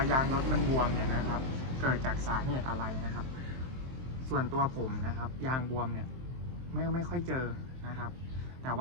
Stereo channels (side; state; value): left; late; 23 ms